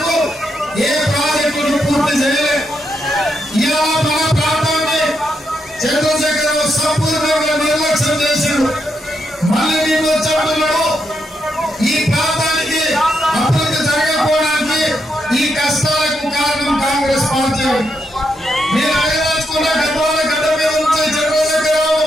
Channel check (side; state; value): both; normal; correlation 0.81